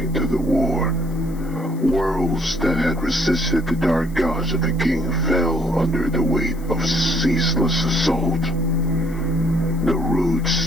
to the war. Worlds that had resisted the dark gods of the king fell under the weight of ceaseless assault. The roots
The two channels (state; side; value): noise; left; hiss, 24 dB below the sound